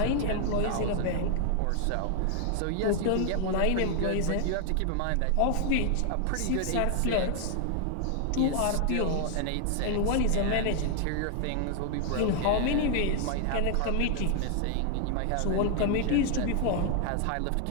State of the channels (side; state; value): both; different; correlation 0.00